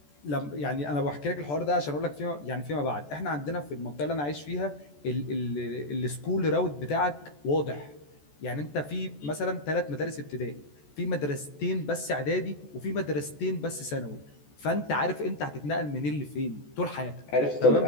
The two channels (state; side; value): late; right; 14 ms